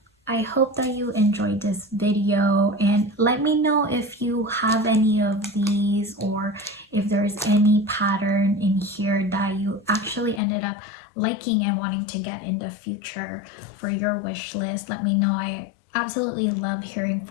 I hope that you enjoyed this video, and let me know if you have any of these, or if there's any pattern in here that you actually ended up liking and wanting to get in the future for your wish list. Let me know. I absolutely love hearing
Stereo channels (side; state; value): right; drops out; at 10.4 s